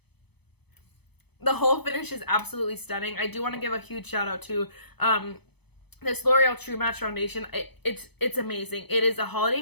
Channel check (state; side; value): late; right; 0.98 ms